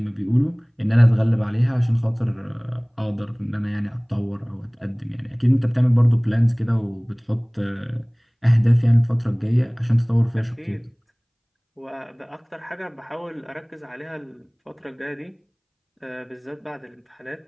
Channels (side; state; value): both; identical; correlation 1.00